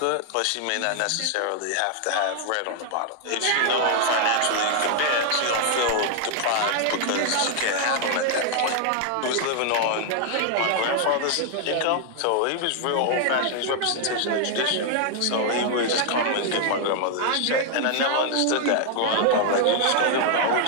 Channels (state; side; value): different; both; correlation 0.00